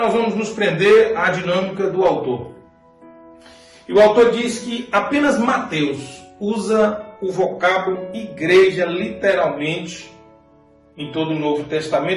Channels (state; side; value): identical; both; correlation 1.00